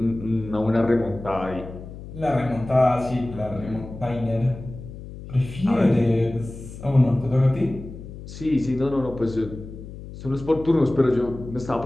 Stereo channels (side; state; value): left; noise; hum, 13 dB below the sound